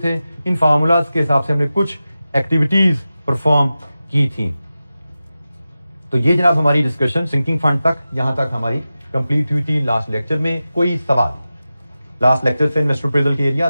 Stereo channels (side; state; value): both; inverted; correlation -0.94